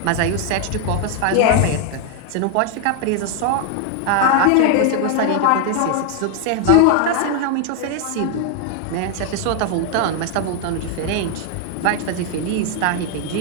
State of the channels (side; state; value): both; different; correlation 0.00